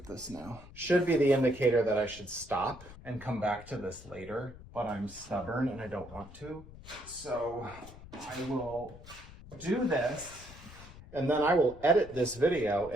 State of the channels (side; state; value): left; noise; rumble, 17 dB below the sound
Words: this now. Should be the indicator that I should stop and come back to this later, but I'm stubborn and I don't want to. So I will do this and then I will edit this video,